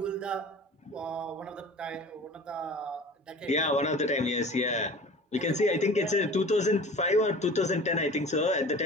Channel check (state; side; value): normal; both; correlation 0.41